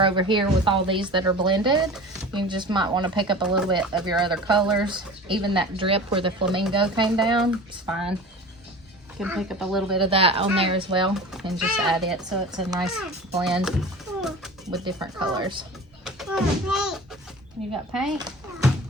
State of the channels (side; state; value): both; normal; correlation 0.36